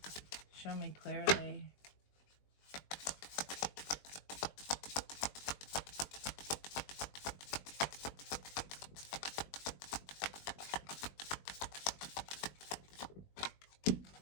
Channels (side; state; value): right; late; 21 ms